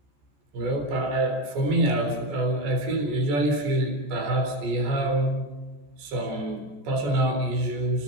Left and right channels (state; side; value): late; left; 14 ms